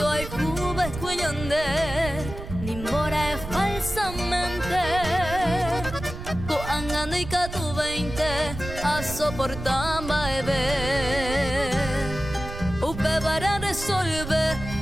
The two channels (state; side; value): noise; right; rumble, 9 dB below the sound